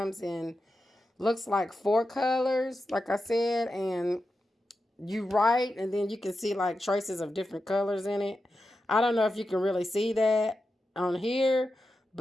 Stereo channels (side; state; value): both; normal; correlation 0.90